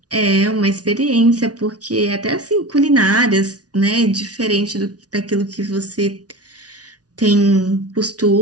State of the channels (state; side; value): late; left; 0.68 ms